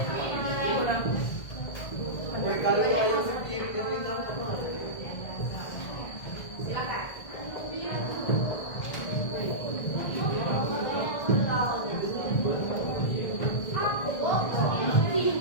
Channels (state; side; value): late; right; 1.6 ms